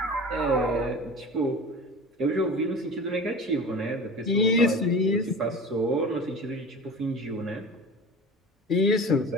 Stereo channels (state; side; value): normal; both; correlation 0.35